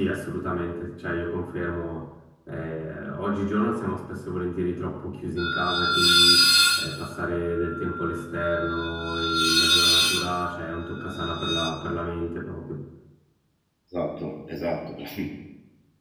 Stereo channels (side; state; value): both; identical; correlation 1.00